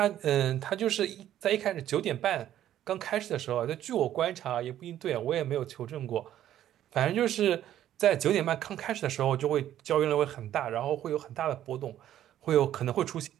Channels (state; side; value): quieter; left; 11.8 dB